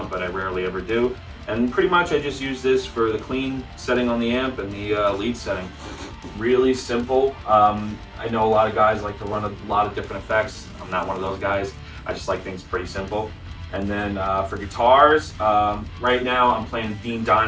but I rarely ever do. And pretty much I just use this for the clean setting on the amp and the lead setting. Really simple. I know a lot of guys like to run a lot of different effects. I'm not one of those guys. I just like things pretty simple. And then for guitars, right now I'm playing Dean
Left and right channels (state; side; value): identical; both; correlation 1.00